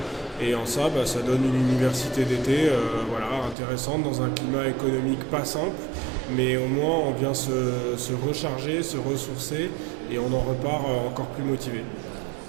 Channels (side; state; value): left; drops out; at 3.6 s